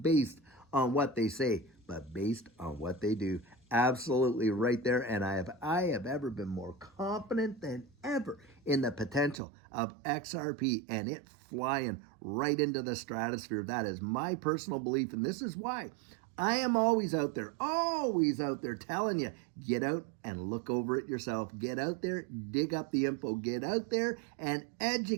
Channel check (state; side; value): drops out; left; at 9.4 s